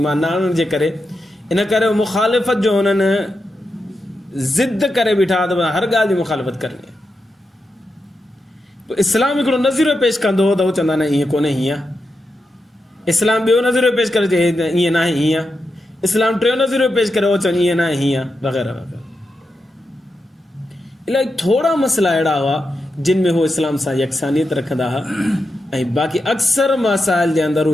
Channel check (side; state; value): both; normal; correlation 0.87